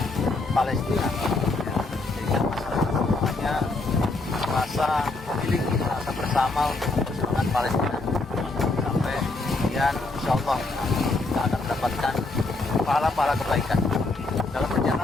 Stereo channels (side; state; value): right; quieter; 3.2 dB